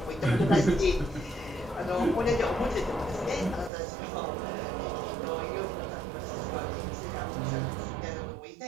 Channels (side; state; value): left; drops out; at 3.7 s